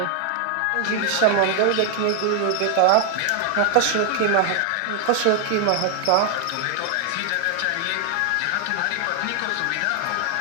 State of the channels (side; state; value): both; different; correlation 0.00